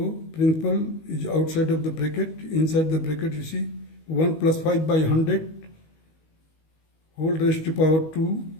principal is outside of the bracket. Inside the bracket you see 1 + 5 by 100 whole raised to power 2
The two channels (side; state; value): right; late; 19 ms